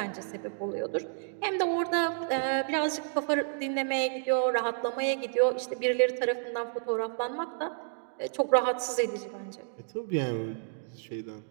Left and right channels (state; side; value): silent; left; digital silence